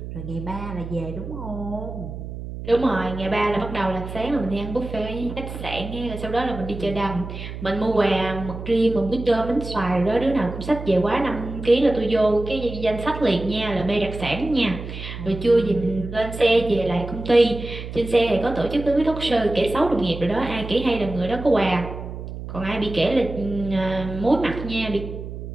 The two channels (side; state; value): right; noise; hum, 9 dB below the sound